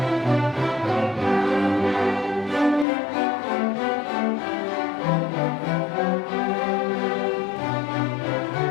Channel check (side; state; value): right; drops out; at 2.9 s